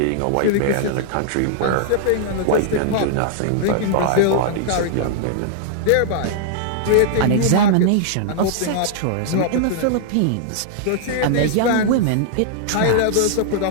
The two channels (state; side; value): different; both; correlation -0.02